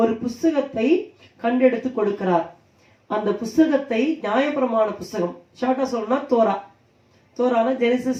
புஸ்தகத்தை கண்டெடுத்து கொடுக்கிறார். அந்த புஸ்தகத்தை நியாயப்பிரமாண புஸ்தகம், ஷார்ட்டா சொல்லணும்னா தோரான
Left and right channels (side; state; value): both; identical; correlation 1.00